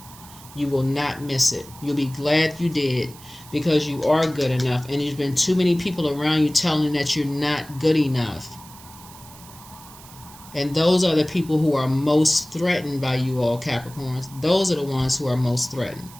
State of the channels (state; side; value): noise; right; hiss, 20 dB below the sound